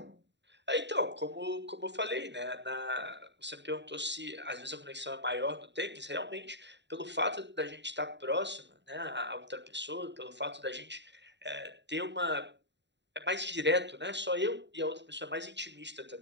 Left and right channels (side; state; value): left; late; 0.52 ms